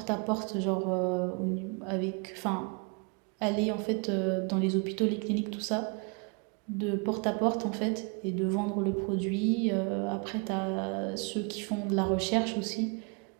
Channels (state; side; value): quieter; left; 34.1 dB